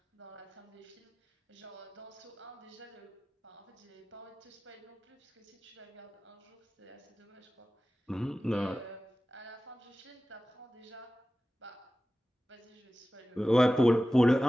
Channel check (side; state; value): both; normal; correlation 0.95